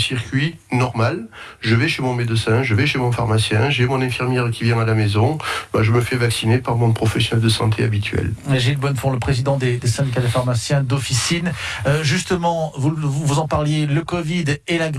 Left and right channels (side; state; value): both; identical; correlation 1.00